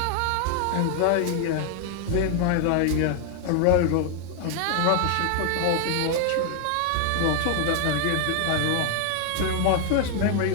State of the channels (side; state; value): both; different; correlation 0.00